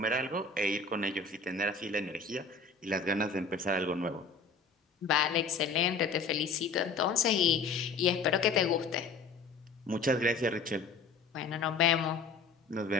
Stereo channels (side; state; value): right; quieter; 4.3 dB